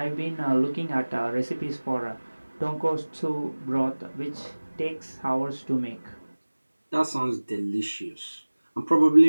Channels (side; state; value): both; inverted; correlation -1.00